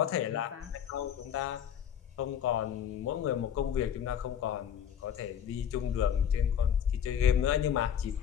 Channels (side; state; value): right; quieter; 8.8 dB